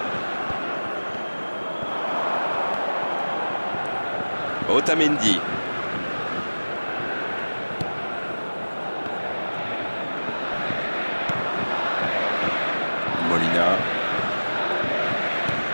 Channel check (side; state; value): both; inverted; correlation -1.00